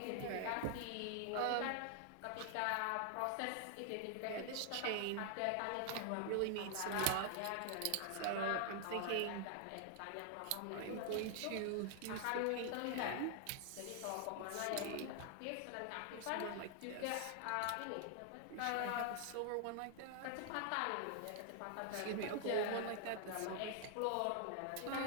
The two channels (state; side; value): different; both; correlation 0.00